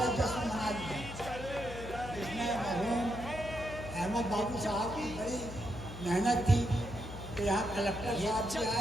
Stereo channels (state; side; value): noise; left; hum, 11 dB below the sound